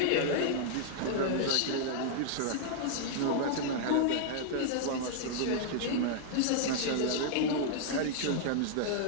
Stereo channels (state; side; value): different; both; correlation -0.01